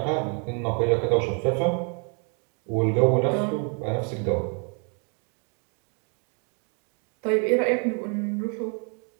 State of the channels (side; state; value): left; quieter; 38.7 dB